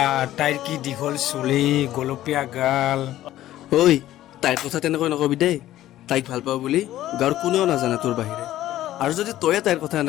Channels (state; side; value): quieter; right; 13.9 dB